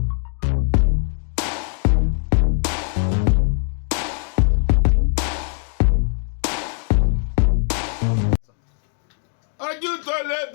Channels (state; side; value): silent; right; 59 dB below the other